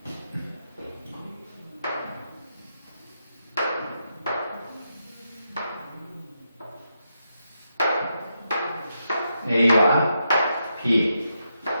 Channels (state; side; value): inverted; both; correlation -0.83